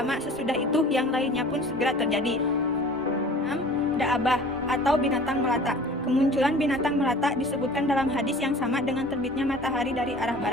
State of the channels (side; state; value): both; normal; correlation 0.45